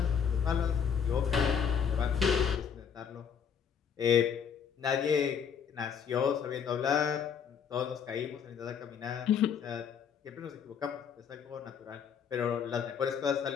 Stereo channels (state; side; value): quieter; right; 7.3 dB